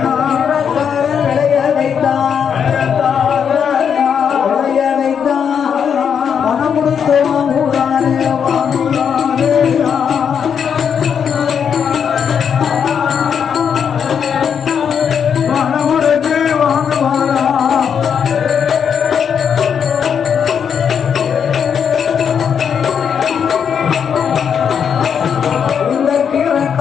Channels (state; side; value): quieter; right; 7.4 dB